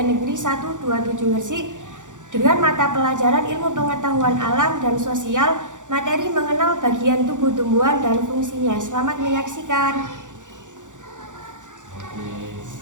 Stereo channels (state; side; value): late; left; 0.86 ms